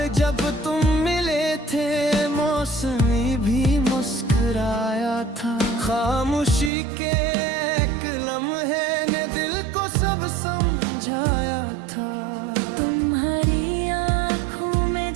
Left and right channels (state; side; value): drops out; left; at 6.7 s